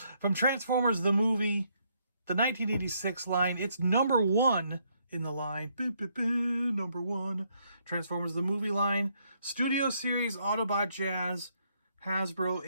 From Transformers the movie, the 1986 line. It's number one in the line. Number one. Transformers the movie line. Studio Series Autobot Jazz. Hasbro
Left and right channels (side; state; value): both; inverted; correlation -0.72